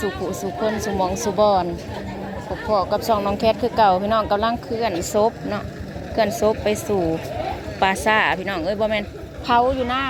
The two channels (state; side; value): identical; both; correlation 1.00